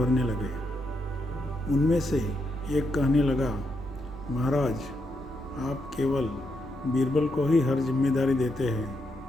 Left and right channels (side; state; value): both; normal; correlation 0.81